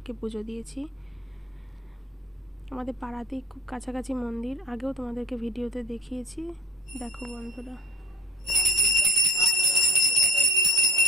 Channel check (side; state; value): both; normal; correlation 0.52